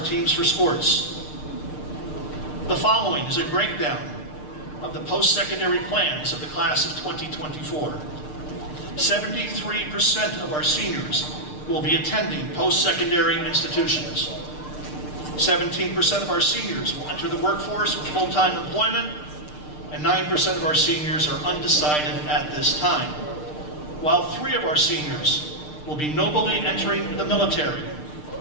teams for sports. The following is a breakdown of the post-secondary plans of the class of 2024. 73% of our seniors will be attending post-secondary institutions. 17% of our seniors will enter the workforce with full-time employment, and 9% of our seniors are undecided at this time, while 3 of our seniors will be nobly entering the military.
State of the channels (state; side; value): late; right; 6.6 ms